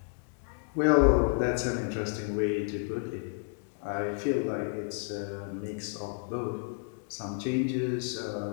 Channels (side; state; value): right; silent; 56 dB below the other